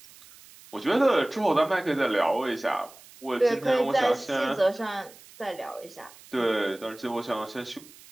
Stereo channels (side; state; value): right; noise; hiss, 22 dB below the sound